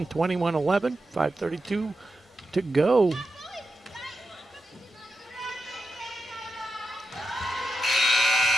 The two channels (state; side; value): normal; both; correlation 0.88